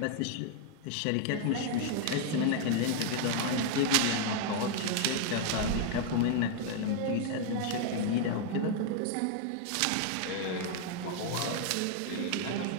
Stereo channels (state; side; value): different; both; correlation 0.00